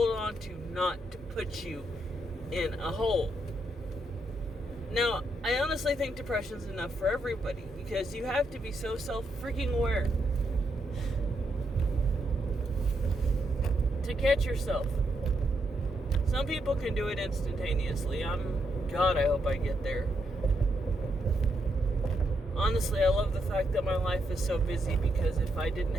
on to, not to put you in a hole. Now, I honestly think depression's enough for everybody, because you have to be so self-freaking aware to catch yourself. Some people can do it instantaneously. God, I hope I get there. Honestly, I love the fact that my life is so busy, because if I didn't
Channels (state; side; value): normal; both; correlation 0.80